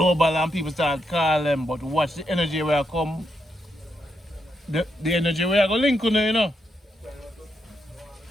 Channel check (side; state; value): both; normal; correlation 0.81